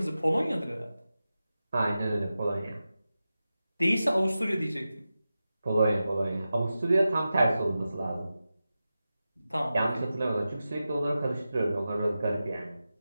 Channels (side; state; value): both; inverted; correlation -0.93